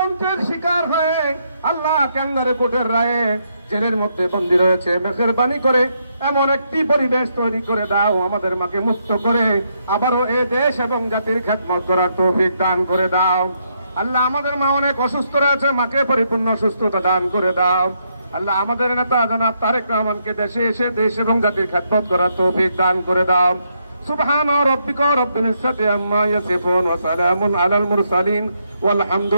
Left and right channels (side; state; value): both; inverted; correlation -0.77